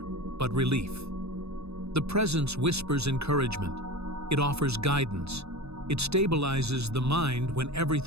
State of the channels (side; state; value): left; late; 0.79 ms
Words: but relief. The presence whispers encouragement. It offers guidance. It stabilizes the mind when